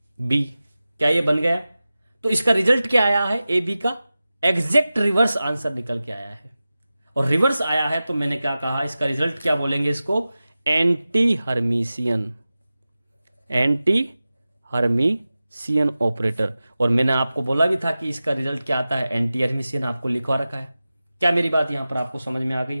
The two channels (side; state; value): both; inverted; correlation -0.95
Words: B. क्या ये बन गया? तो इसका रिजल्ट क्या आया है? ए बी का एग्जैक्ट रिवर्स आंसर निकल के आया है। और रिवर्स आया है तो मैंने क्या कहा? इसका रिजल्ट क्या बोलेंगे? इसको anti Hermitian, anti Hermitian operator. और मैंने आपको बोला भी था कि इसका रिजल्ट क्या आता है? Anti Hermitian. आपको लिखवा रखा है। क्या मेरी बात यहां पर आपको समझ में आ गई